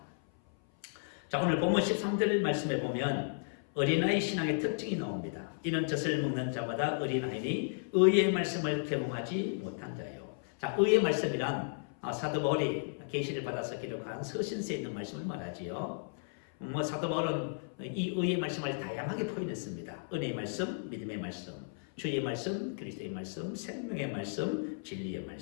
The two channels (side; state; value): right; silent; 55 dB below the other